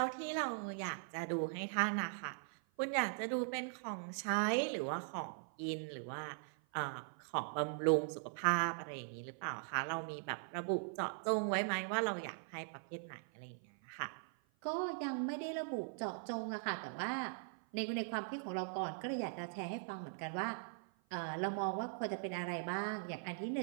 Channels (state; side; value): silent; left; 51 dB below the other